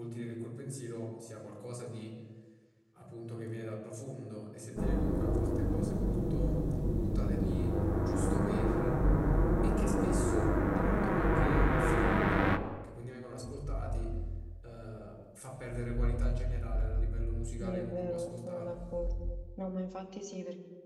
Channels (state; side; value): identical; both; correlation 1.00